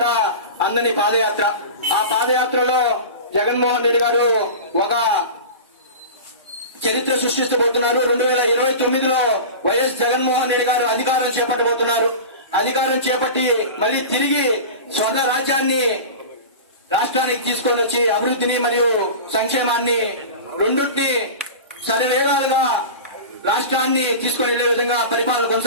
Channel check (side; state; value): both; inverted; correlation -0.31